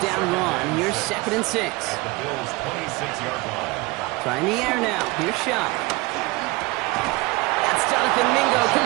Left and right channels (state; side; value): quieter; left; 23.2 dB